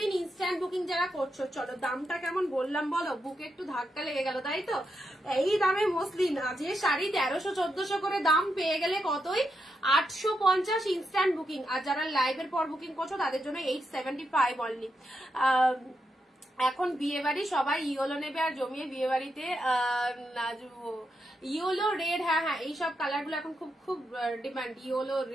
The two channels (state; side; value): normal; both; correlation 0.84